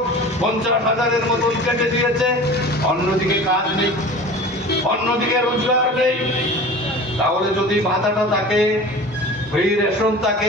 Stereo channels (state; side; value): normal; both; correlation 0.38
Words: 50,000-এর মতন কেটে দিয়েছে। অন্যদিকে কাজ নেই, অন্যদিকে রোজগার নেই। তাহলে যদি ভাতাটা থাকে, ফ্রি রেশন থাকে,